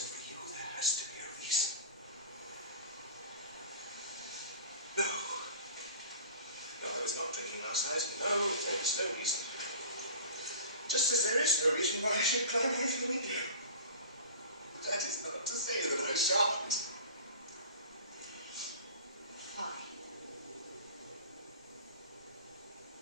for you, there has to be a reason. No. No, I was not drinking last night. No, there is no reason. Just as there is no reason why I should climb out of the window. That is not to say that I shan't. Fine.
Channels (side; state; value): both; inverted; correlation -0.38